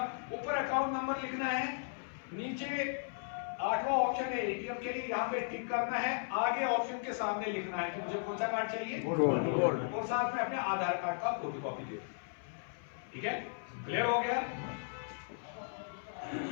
ऊपर अकाउंट नंबर लिखना है, नीचे 8वां ऑप्शन है एटीएम के लिए, यहाँ पे टिक करना है, आगे ऑप्शन के सामने लिखना है कि मुझे कौन सा कार्ड चाहिए, गोल्ड, और साथ में अपने आधार कार्ड का फोटोकॉपी दे। ठीक है, क्लियर हो गया?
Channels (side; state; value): right; silent; 54 dB below the other